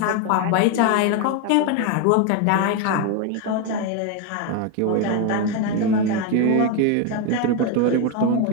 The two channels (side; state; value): both; different; correlation 0.02